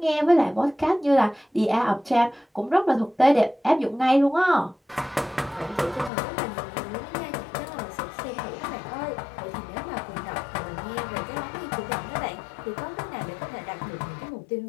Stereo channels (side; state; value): right; drops out; at 6.1 s